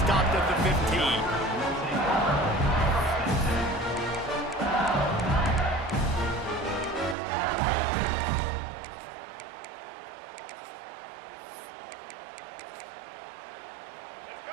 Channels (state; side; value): drops out; left; at 7.2 s